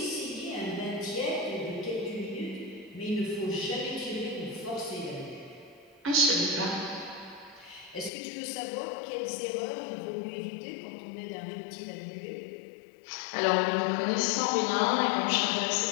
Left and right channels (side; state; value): right; drops out; at 8.1 s